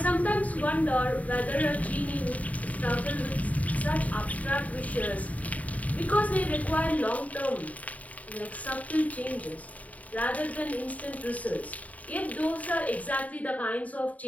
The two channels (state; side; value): late; right; 0.070 ms